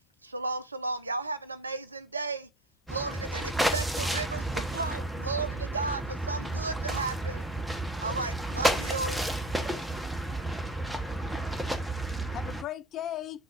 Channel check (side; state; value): both; normal; correlation 0.36